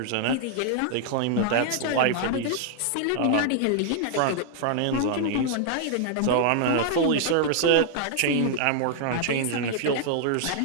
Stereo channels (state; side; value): different; both; correlation 0.00